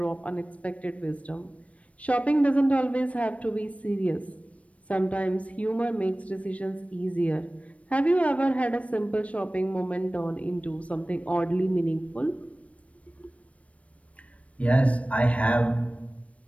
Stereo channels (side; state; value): right; late; 0.064 ms